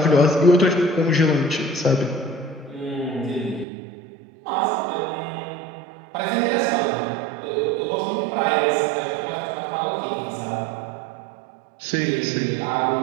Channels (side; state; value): left; drops out; at 3.7 s